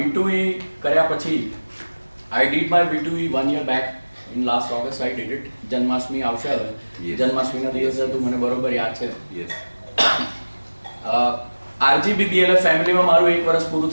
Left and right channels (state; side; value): inverted; both; correlation -1.00